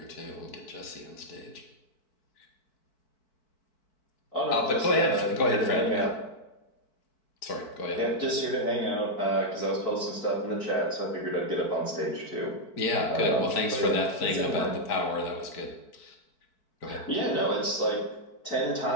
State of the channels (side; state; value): right; late; 4.6 ms